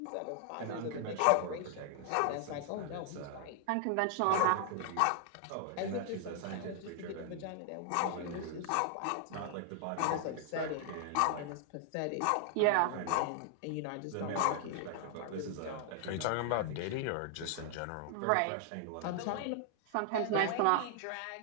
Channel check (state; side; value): different; both; correlation 0.00